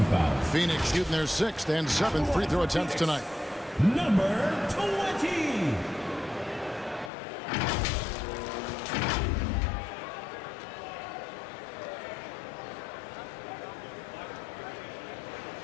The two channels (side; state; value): right; drops out; at 7.1 s